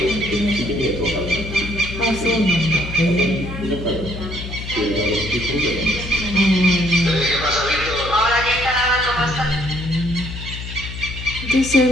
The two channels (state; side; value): noise; left; hum, 9 dB below the sound